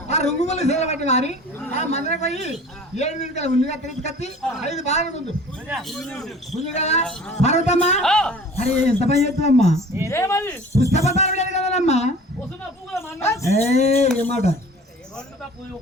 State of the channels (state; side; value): normal; both; correlation 0.45